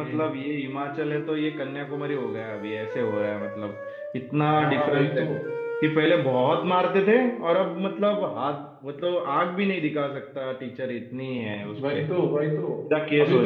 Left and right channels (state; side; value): identical; both; correlation 1.00